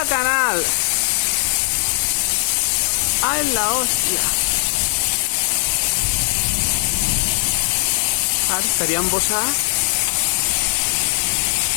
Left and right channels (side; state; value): right; silent; 66 dB below the other